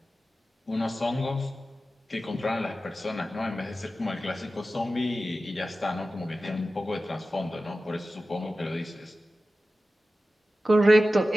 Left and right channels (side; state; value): both; normal; correlation 0.94